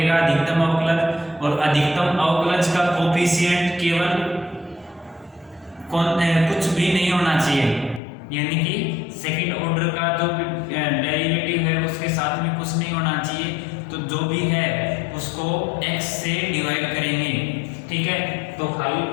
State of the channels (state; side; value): drops out; right; at 8.0 s